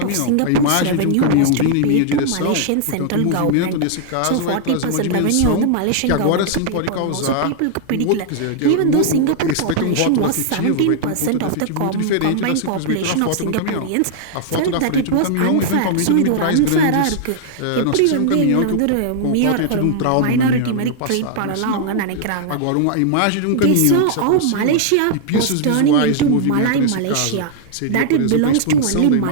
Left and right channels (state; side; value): different; both; correlation -0.01